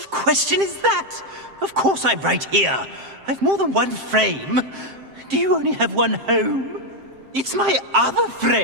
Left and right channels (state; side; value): late; left; 7.6 ms